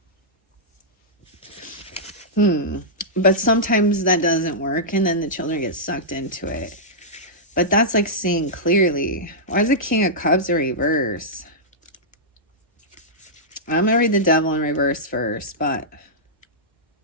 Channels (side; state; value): both; normal; correlation -0.12